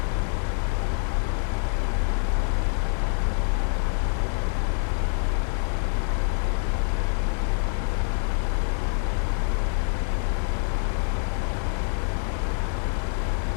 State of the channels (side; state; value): right; silent; 61 dB below the other